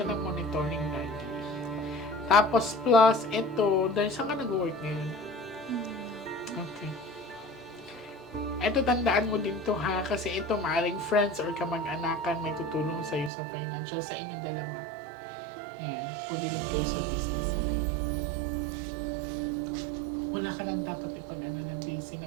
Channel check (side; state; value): left; drops out; at 13.3 s